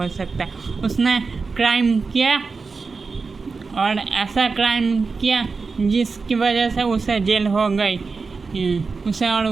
सकता। उसने क्राइम किया और ऐसा क्राइम किया जिसकी वजह से उसे जेल हो गई, उसे और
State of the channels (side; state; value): left; quieter; 4.5 dB